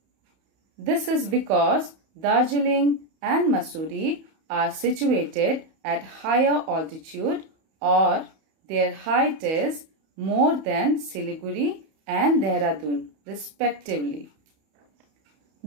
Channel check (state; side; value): late; left; 31 ms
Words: This is because Darjeeling and Mussoorie are situated at higher altitude or their height is more than Siliguri and Dehradun respectively.